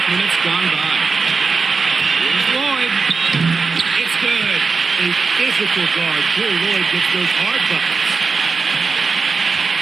minutes gone by. Lloyd. It's good. A physical guard. Drew Lloyd gets those hard buckets.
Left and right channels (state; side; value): quieter; left; 4.7 dB